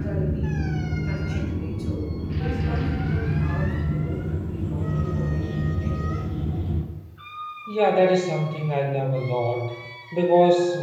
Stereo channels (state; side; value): identical; both; correlation 1.00